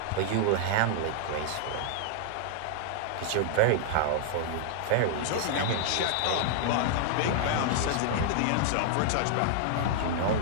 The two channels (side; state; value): both; different; correlation -0.01